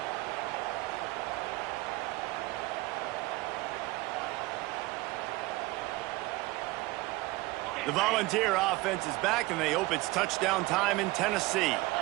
The Volunteer offense is back, and they hope it's touchdown time in Tennessee.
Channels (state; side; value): quieter; left; 20.5 dB